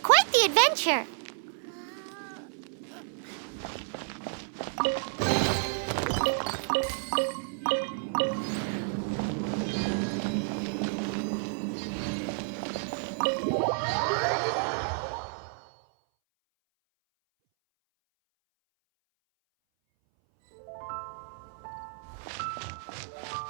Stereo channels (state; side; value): silent; left; 57 dB below the other